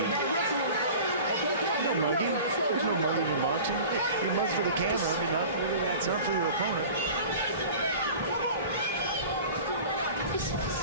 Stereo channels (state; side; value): inverted; both; correlation -0.39